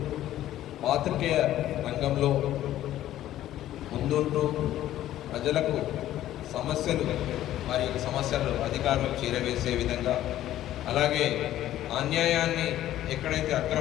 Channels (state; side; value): quieter; right; 13.1 dB